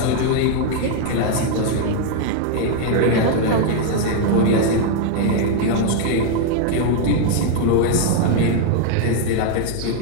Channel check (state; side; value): different; both; correlation 0.00